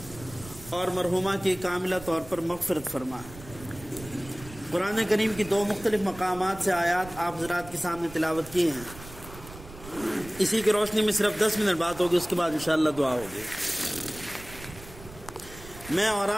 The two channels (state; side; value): noise; right; rumble, 16 dB below the sound